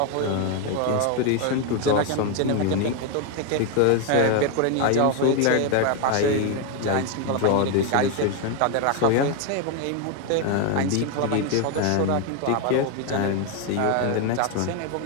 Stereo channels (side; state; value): both; different; correlation 0.01